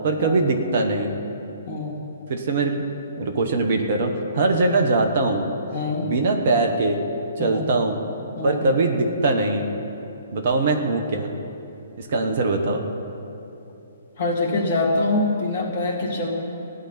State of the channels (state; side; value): inverted; both; correlation -0.56